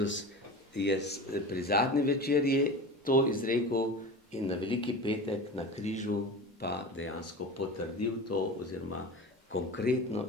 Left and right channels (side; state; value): both; normal; correlation 0.32